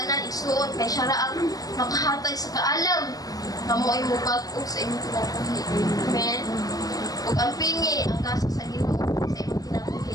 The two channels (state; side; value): late; right; 0.18 ms